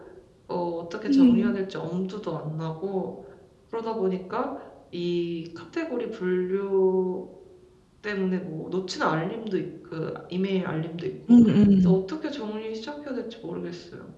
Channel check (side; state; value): both; identical; correlation 1.00